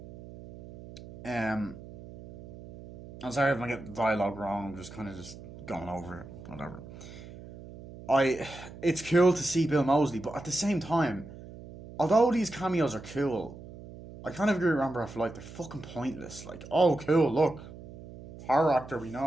um, I'm sorry if I get the dialogue wrong. I'm just kind of just going over it, whatever. I It's cool to see Bill Mosley, but at the same time, although these cameos are cool, I kind of agree with Rambo for like they're fucking pointless. Like, oh cool, look, horror actor we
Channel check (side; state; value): right; noise; hum, 15 dB below the sound